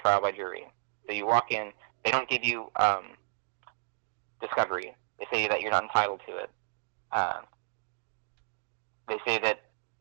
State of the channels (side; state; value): left; silent; digital silence